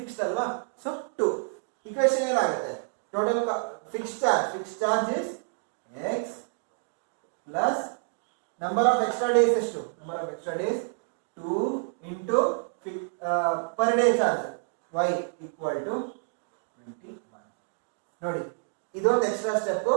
ಅಲ್ವಾ? ಸೊ 2. ಇಕ್ವೇಶನ್ ಏನಾಗುತ್ತೆ? Total fixed charge is x plus number of extra days ಎಷ್ಟು? Number of extra days 2 into per day charge y equal to 21. ನೋಡಿ, ಇದೊಂದು extra step,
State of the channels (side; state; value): left; silent; digital silence